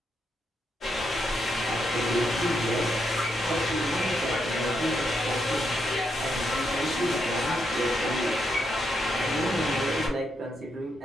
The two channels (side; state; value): both; normal; correlation 0.80